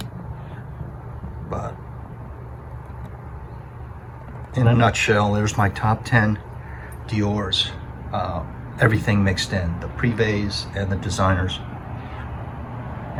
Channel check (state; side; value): identical; both; correlation 1.00